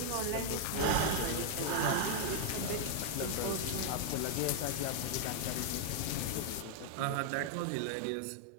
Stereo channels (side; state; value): both; different; correlation -0.01